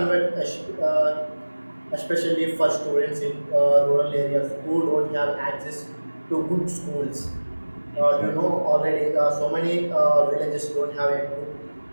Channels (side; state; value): both; inverted; correlation -1.00